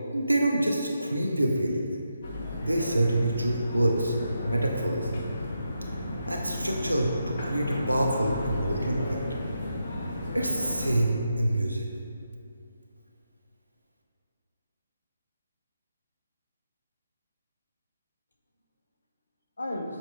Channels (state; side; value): inverted; both; correlation -0.85